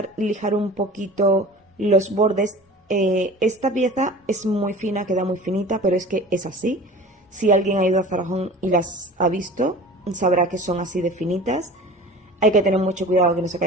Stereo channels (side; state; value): both; normal; correlation 0.40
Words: lijar un poquito los bordes. Esta pieza es muy fina, queda muy finita, pero es que es así. Si alguien ha ido a Zara Home y las ha visto, sabrá que son así de finitas. Hay que tener mucho cuidado que no se